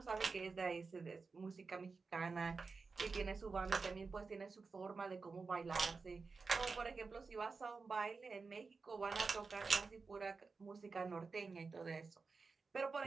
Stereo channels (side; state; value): left; quieter; 4.4 dB